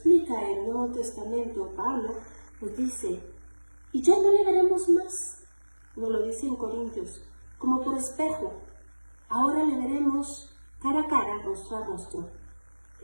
el Nuevo Testamento, Pablo nos dice, y ya no le veremos más, nos lo dice en Corintios, como por espejo. Ahora le veremos cara a cara, rostro a rostro.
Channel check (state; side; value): inverted; both; correlation -1.00